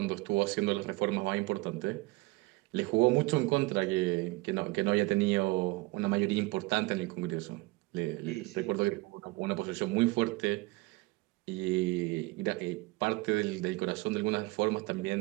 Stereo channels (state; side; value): quieter; left; 22.4 dB